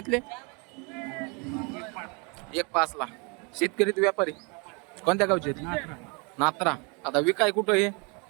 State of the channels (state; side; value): quieter; left; 32.2 dB